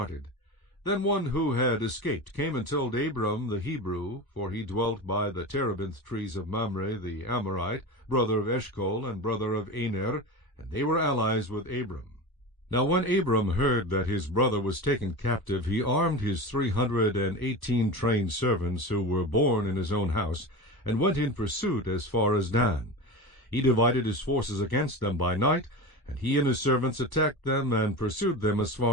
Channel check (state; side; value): late; right; 1.2 ms